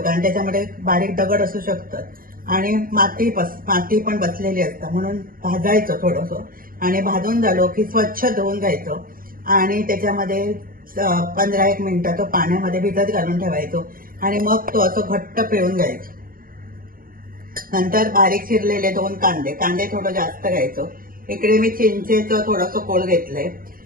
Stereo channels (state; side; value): late; left; 0.41 ms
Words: त्याच्यामध्ये बारीक दगड असू शकतात आणि माती पण बसलेली असतं, म्हणून भाजायचं थोडंसं. आणि भाजून झालो की स्वच्छ धुवून घ्यायचं आणि त्याच्यामध्ये 15-1 मिनिटं तो पाण्यामध्ये भिजत घालून ठेवायचो आणि मग तो असं घट्ट पिळून घ्यायचो. नंतर बारीक चिरलेले 2 कांदे थोडं जास्त घ्यायचो. इकडे मी चिंचेचं थोडंसं कोळ घेतलंय.